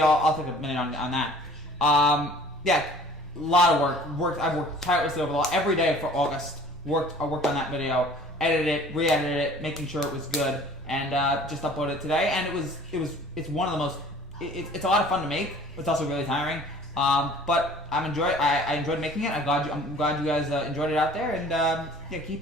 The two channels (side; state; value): both; normal; correlation 0.50